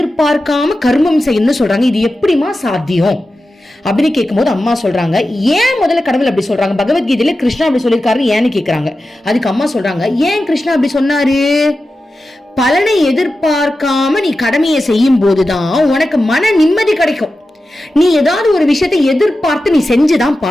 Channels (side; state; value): both; normal; correlation 0.92